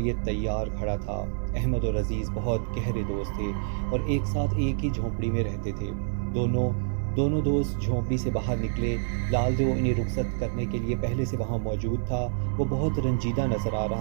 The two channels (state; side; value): silent; left; 60 dB below the other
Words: تیار کھڑا تھا۔ احمد اور عزیز بہت گہرے دوست تھے اور ایک ساتھ ایک ہی جھونپڑی میں رہتے تھے۔ دونوں دوست جھونپڑی سے باہر نکلے۔ لال دیو انہیں رخصت کرنے کے لیے پہلے سے وہاں موجود تھا۔ وہ بہت رنجیدہ نظر آ